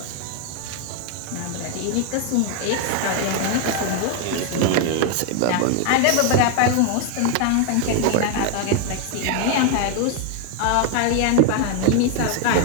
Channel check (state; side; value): different; both; correlation 0.01